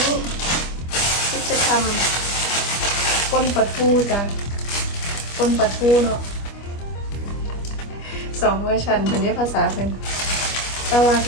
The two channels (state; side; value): late; right; 25 ms